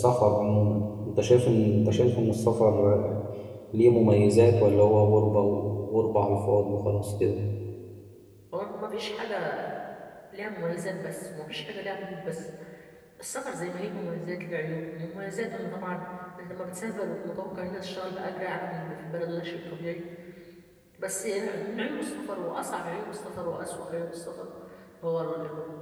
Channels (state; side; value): identical; both; correlation 1.00